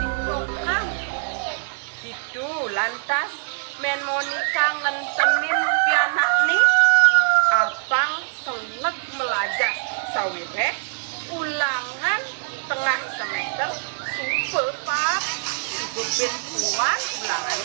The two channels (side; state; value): left; silent; 63 dB below the other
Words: Itu lantas men Monica ngentenin pianak nih apang seleg melajah sawireh ulangan tengah semester super pak juga ben puan